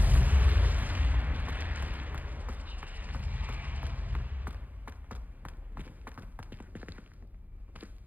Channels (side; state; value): left; late; 0.082 ms